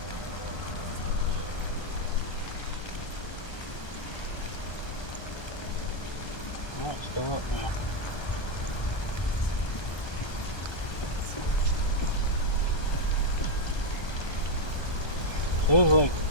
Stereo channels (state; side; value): late; right; 1.2 ms